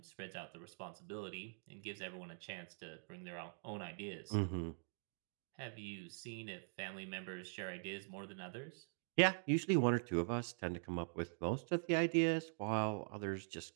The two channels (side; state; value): left; silent; digital silence